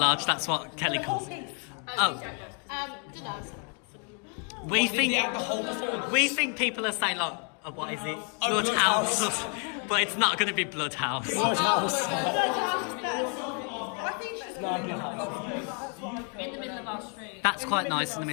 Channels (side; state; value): right; quieter; 40.0 dB